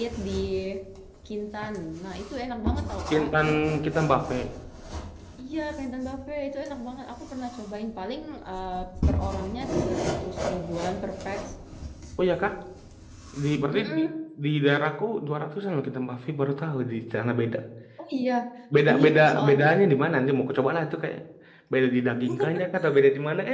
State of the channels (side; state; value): both; identical; correlation 1.00